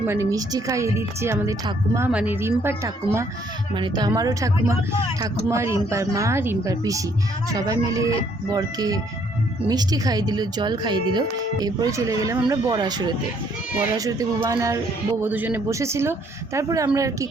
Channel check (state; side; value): normal; both; correlation 0.66